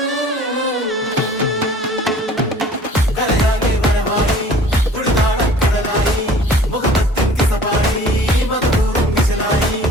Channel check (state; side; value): normal; both; correlation 0.49